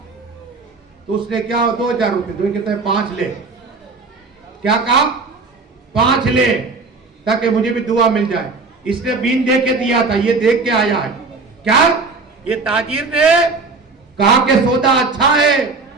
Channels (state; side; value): quieter; left; 4.0 dB